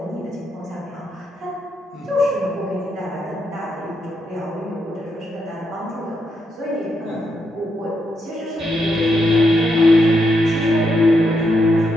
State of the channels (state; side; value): normal; both; correlation 0.80